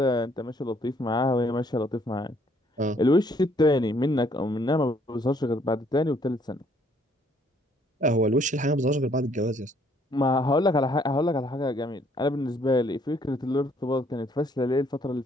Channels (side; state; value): both; normal; correlation 0.65